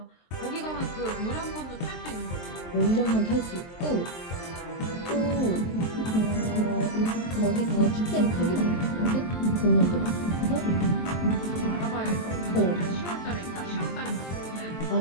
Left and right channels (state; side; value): late; right; 23 ms